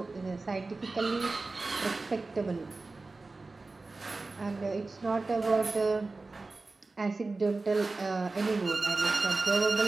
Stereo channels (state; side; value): quieter; left; 3.5 dB